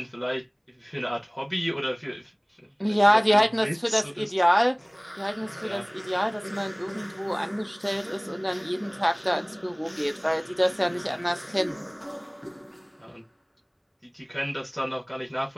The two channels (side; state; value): both; identical; correlation 1.00